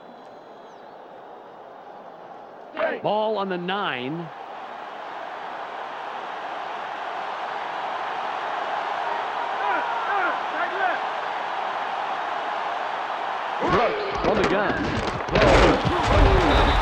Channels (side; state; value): both; identical; correlation 1.00